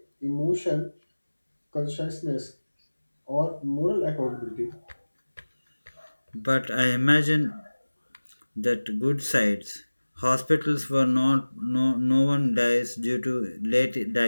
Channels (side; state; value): both; inverted; correlation -1.00